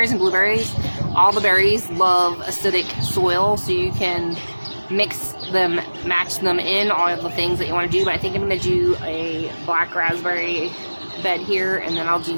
and blueberries, all the berries love acidic soil, so you can mix them, match them in, all of the things that you want to do. But I think I'm going to do a black raspberry bed here, and then I'll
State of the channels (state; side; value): inverted; both; correlation -1.00